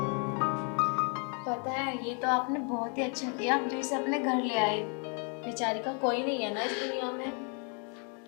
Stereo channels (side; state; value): right; quieter; 38.6 dB